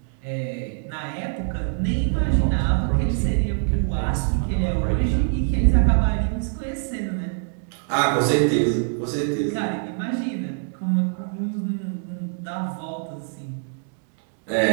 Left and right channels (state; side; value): silent; left; 56 dB below the other